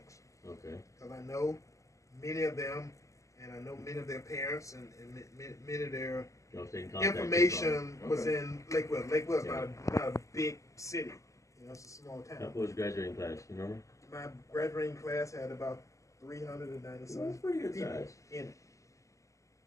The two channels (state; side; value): late; right; 0.16 ms